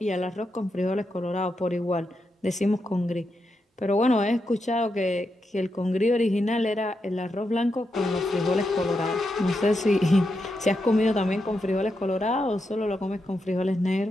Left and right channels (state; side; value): normal; both; correlation 0.85